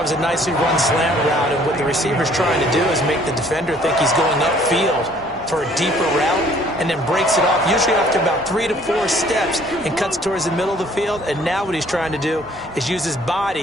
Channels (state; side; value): noise; right; hum, 25 dB below the sound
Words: was a nicely run slant route, and what the receiver's trying to do is make the defender think he's going upfield for a deeper route, and then breaks it off, usually after about 3 to 4 steps, and cuts towards the middle of the field. And now what he's trying to do is use his